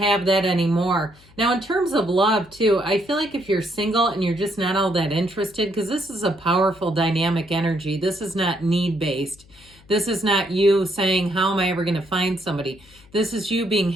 that anymore. Now, in terms of love, too, I feel like if you're single and you're just not all that interested, because this is a powerful dynamic energy. This is not need-based. This is not you saying, how am I ever going to find somebody? This is you being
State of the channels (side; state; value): left; noise; hum, 26 dB below the sound